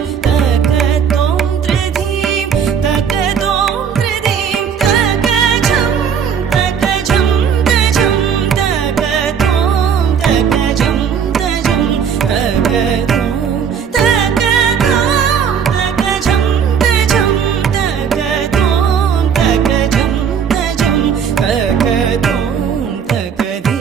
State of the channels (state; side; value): quieter; left; 7.3 dB